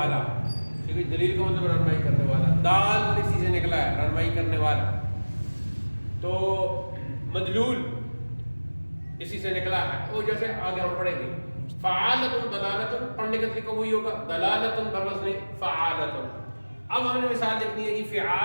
ٹھیک ہے. دلیل کا مطلب رہنمائی کرنے والا. دال اسی سے نکلا ہے رہنمائی کرنے والا. تو مدلول اسی سے نکلا ہے. وہ جیسے آگے ہم پڑھیں گے. فعالتن دلالتن پڑھنے کا طریقہ وہی ہوگا. دلالتن بوزن فعالتن. اب ہم نے مثال لکھنی ہے جی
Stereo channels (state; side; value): inverted; both; correlation -1.00